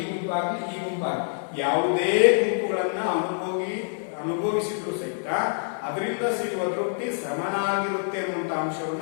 ಗುಂಪಾಗ್ಲಿ, ಇ ಗುಂಪಾಗ್ಲಿ ಯಾವುದೇ ಗುಂಪುಗಳನ್ನ ಅನುಭವಿಸಿದ್ರು ಸಹಿತ ಅದರಿಂದ ಸಿಗುವ ತೃಪ್ತಿ ಸಮನಾಗಿರುತ್ತೆ ಅನ್ನುವಂತ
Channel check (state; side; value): silent; right; digital silence